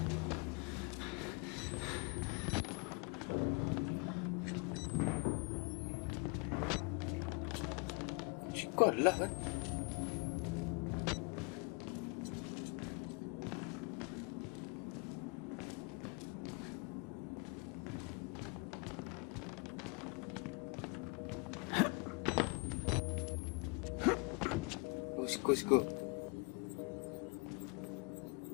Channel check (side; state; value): right; quieter; 31.8 dB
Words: Kuat lah kan. Siku.